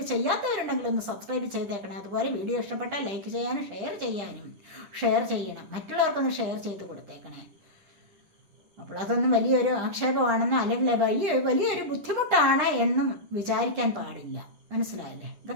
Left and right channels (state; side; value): late; left; 10 ms